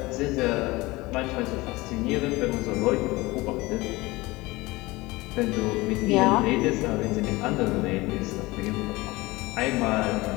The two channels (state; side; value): quieter; right; 21.4 dB